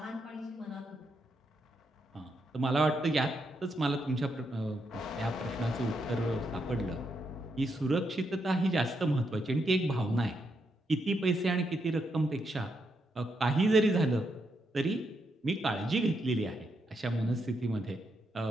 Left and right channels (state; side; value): normal; both; correlation 0.80